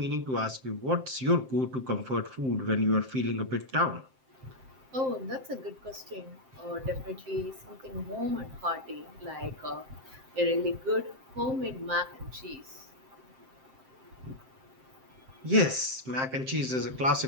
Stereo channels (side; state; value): left; late; 7.6 ms